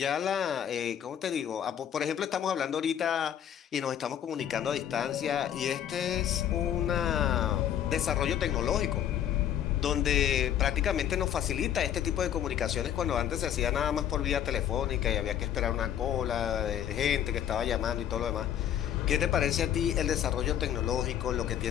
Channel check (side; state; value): right; quieter; 10.0 dB